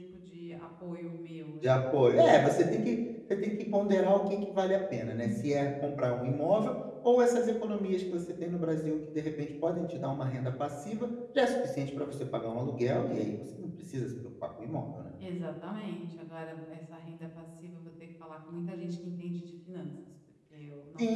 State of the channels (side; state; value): both; identical; correlation 1.00